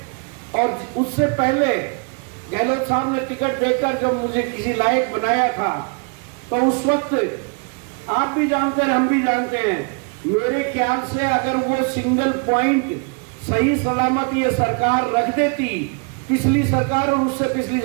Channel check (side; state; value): left; quieter; 35.7 dB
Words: और उससे पहले गहलोत साहब ने टिकट देकर जब मुझे किसी लायक बनाया था तो उस वक्त आप भी जानते हैं, हम भी जानते हैं, मेरे ख्याल से अगर वो सिंगल पॉइंट सही सलामत ये सरकार रख देती, पिछली सरकार और उससे पिछली